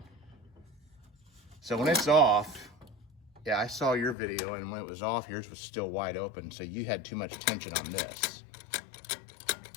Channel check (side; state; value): right; drops out; at 4.2 s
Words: So when it's off, yeah, I saw your video, and when it was off, yours was still wide open, so you had too much tension on this.